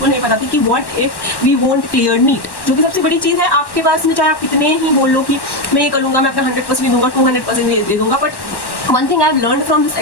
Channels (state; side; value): late; right; 1.1 ms